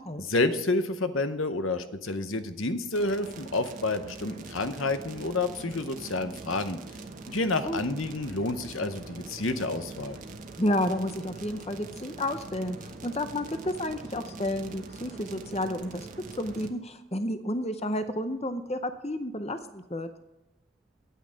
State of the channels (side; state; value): both; normal; correlation 0.32